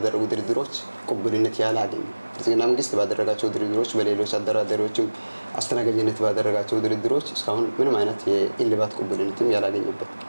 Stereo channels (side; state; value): both; inverted; correlation -1.00